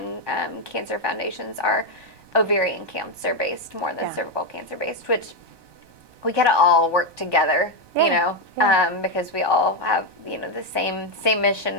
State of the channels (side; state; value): left; late; 1.2 ms